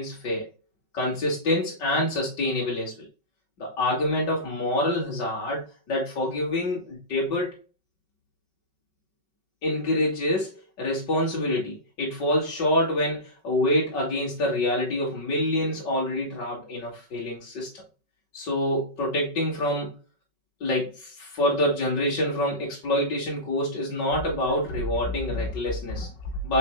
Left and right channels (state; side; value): late; right; 5.3 ms